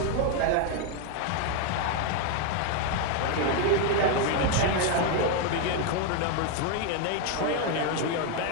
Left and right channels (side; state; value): both; different; correlation 0.01